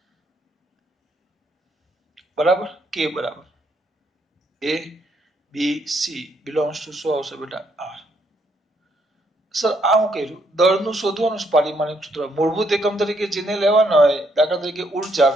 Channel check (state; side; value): normal; both; correlation 0.73